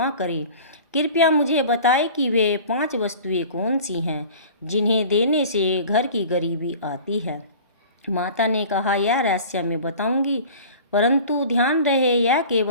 करें, कृपया मुझे बताएं कि वे 5 वस्तुएं कौन सी हैं जिन्हें देने से घर की गरीबी आती है। माता ने कहा, यह रहस्य मैं बताऊंगी, परंतु ध्यान रहे यह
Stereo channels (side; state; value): both; inverted; correlation -0.41